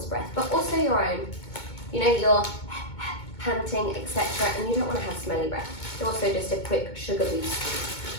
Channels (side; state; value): right; late; 2.2 ms